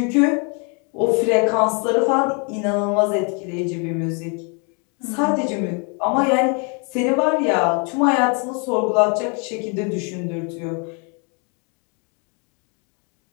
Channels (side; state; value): right; quieter; 35.8 dB